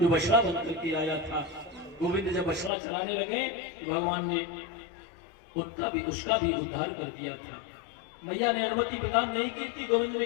जो बछड़ा बन करके आया था। गोविंद जब बछड़ा चलाने लगे तो भगवान ने उसका भी उद्धार कर दिया था। मैया ने अनुमति प्रदान नहीं की थी। गोविंद ने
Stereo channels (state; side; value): drops out; right; at 2.7 s